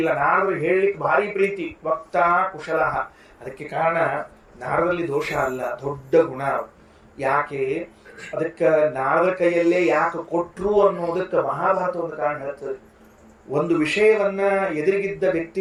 ನಾರದ್ರು ಹೇಳಲಿಕ್ಕೆ ಭಾರಿ ಪ್ರೀತಿ. ವಕ್ತಾ ಕುಶಲ. ಅದಕ್ಕೆ ಕಾರಣ ನಾರದಲ್ಲಿ ದೋಷ ಅಲ್ಲ, ದೊಡ್ಡ ಗುಣ. ಯಾಕೆ ಅದಕ್ಕೆ ನಾರದ ಕೈಯಲ್ಲೇ ಯಾಕೆ ಕೊಟ್ರು ಅನ್ನೋದಕ್ಕೆ ಮಹಾಭಾರತ ಒಂದು ಕಾರಣ ಹೇಳ್ತದೆ. ಒಂದು ವಿಷಯವನ್ನ ಎದುರಿಗಿದ್ದ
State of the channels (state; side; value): identical; both; correlation 1.00